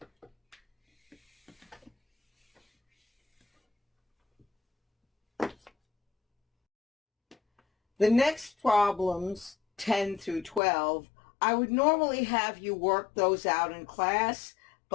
The next problems, 10 through 12, I would normally have you work those out in class,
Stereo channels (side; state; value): right; drops out; at 10.6 s